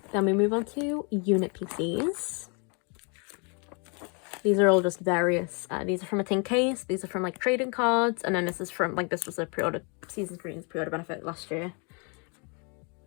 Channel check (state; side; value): quieter; right; 35.2 dB